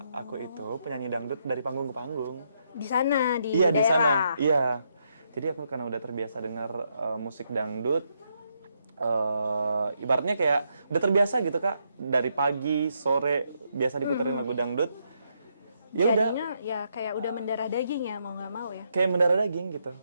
aku itu penyanyi dangdut dari panggung ke panggung. Di sana, di Iya, daerah? di sana. Iya. Jadi aku karena udah terbiasa dengar musik dangdut, ibaratnya kayak udah terbiasa gitu Kak. Dari pagi, sore, biasa diputerin lagu dangdut. Ya udah. Jadinya ya kayak udah mendarah daging ya, mau nggak mau ya? Kayak mendarah daging gitu.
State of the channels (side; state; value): both; inverted; correlation -0.78